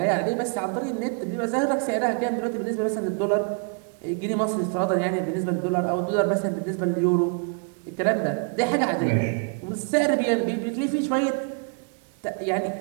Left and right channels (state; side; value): quieter; left; 39.1 dB